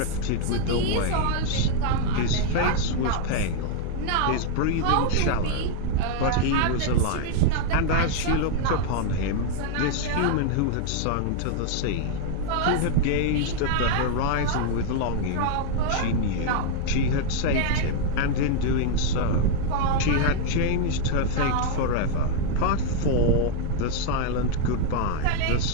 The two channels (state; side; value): different; both; correlation 0.00